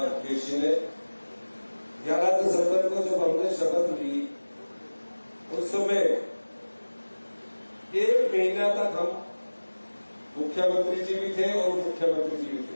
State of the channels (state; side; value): inverted; both; correlation -1.00